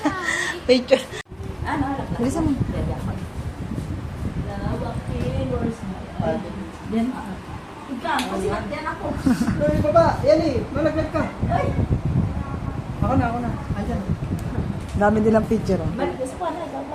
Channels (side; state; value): both; identical; correlation 1.00